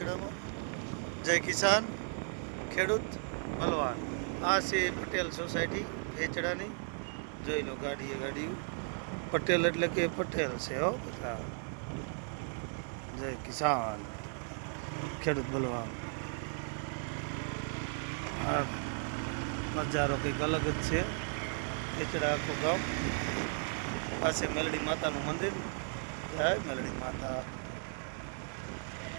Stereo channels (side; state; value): left; silent; 54 dB below the other